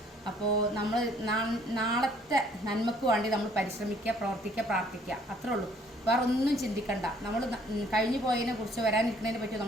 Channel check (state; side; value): normal; both; correlation 0.61